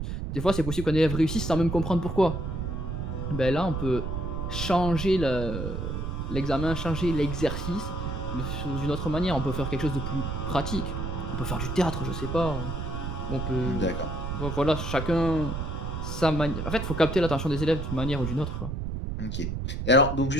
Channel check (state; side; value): noise; right; rumble, 4 dB below the sound